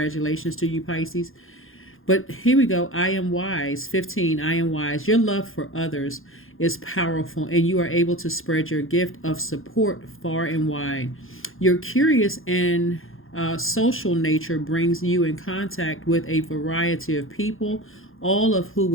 to you, Pisces. But here we go. I am wise. 15, I am wise. Your love for others is powerful, and you are able to spread your gift of support far and wide. Your curious and social nature brings you in contact with a variety of people, all of who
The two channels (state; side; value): late; right; 0.60 ms